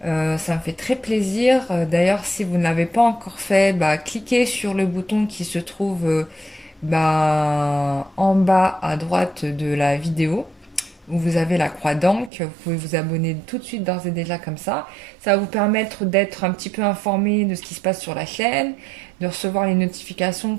Ça me fait très plaisir. D'ailleurs, si vous ne l'avez pas encore fait, cliquez sur le bouton qui se trouve en bas à droite de la vidéo, où vous avez la croix d'encre. Vous pouvez vous abonner tout de suite d'ores et déjà comme ça. Ça va vous permettre d'être un petit peu informé de ce qui se passe sur la chaîne, de recevoir les notifications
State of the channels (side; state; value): left; drops out; at 12.3 s